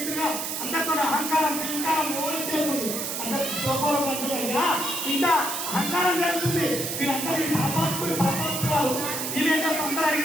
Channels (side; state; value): right; noise; hiss, 3 dB below the sound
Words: ఇంటిగా అందరితో అహంకారం అహంకారం ఓడి చేస్తుంది అందరికి శోభాలు అంటున్నాయా ఇంత అహంకారం జరుగుతుంది వీళ్ళందరూ పాపాత్ములు వీళ్ళేంటో అందరూ